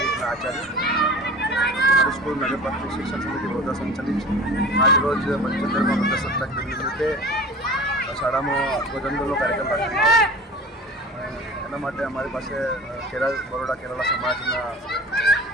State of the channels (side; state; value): both; normal; correlation 0.39